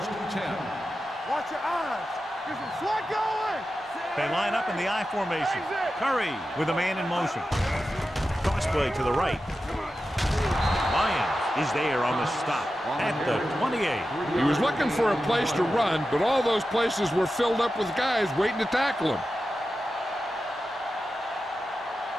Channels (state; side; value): normal; both; correlation 0.92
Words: and 10. Watch your eyes. Get some slot going. They line up in the I formation. Curry with a man in motion. Cross play to the right. Lyons is there on the stop at the 28. He was looking for a place to run, but all those places were filled up with guys waiting to tackle him.